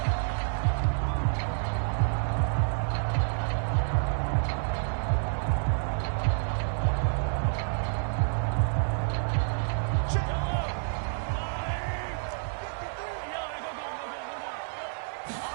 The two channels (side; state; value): left; silent; 57 dB below the other